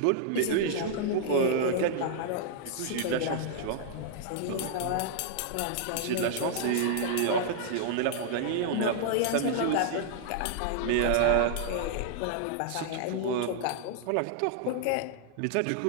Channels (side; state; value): both; different; correlation -0.01